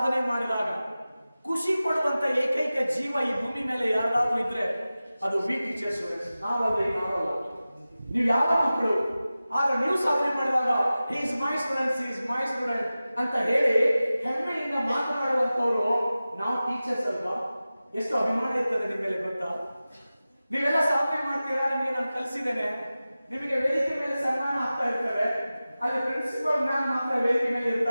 ಮಾಡಿದಾಗ ಖುಷಿ ಪಡುವಂತ ಏಕೈಕ ಜೀವ ಈ ಭೂಮಿ ಮೇಲೆ ಯಾರಾದ್ರೂ ಇದ್ರೆ ಅದು ವಿ ಟೀಚರ್ಸ್. ನಾವಲ್ಲ, ನಾವಲ್ಲ, ನೀವು ಯಾವ ಮಕ್ಕಳು. ಆಗ ನೀವು ಸಾಧನೆ ಮಾಡಿದಾಗ ಹಿ ಇಸ್ ಮೈ ಸ್ಟೂಡೆಂಟ್ ಅಂತ ಹೇಳಿ ಹೆಮ್ಮೆಯಿಂದ ಮಾತನಾಡುವಂತವ್ರು ನಾವು ಟೀಚರ್ಸ್ ಅಲ್ವಾ? ಎಷ್ಟು ಅಭಿಮಾನ ಇರ್ತದೆ ನಿಮ್ಮ ಮೇಲೆ ಗೊತ್ತಾ? ನೀವೆಲ್ಲ ಸಾಧನೆ ಮಾಡ್ತೀರಾ, ನಿಮಗೆ ನಾನು ಕಲಿಸಿದ್ದೇನೆ, ನಿಮಗೆ ವೇದಿಕೆ ಮೇಲೆ ಸನ್ಮಾನ ಆಗ್ತಾ ಇರ್ತವೆ, ಅಲ್ಲಿ ಪ್ರಿನ್ಸಿಪಲ್ ಮ್ಯಾಮ್ ಮಾತ್ರ ವೇದಿಕೆ ಮೇಲೆ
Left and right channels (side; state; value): both; inverted; correlation -0.96